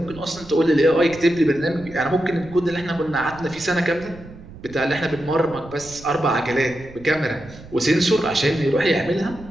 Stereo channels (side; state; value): right; noise; rumble, 18 dB below the sound